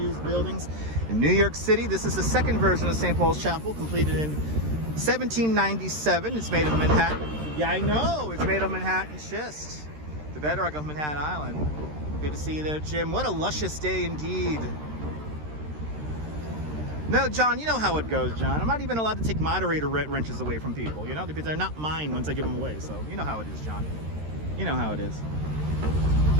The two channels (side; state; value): left; late; 13 ms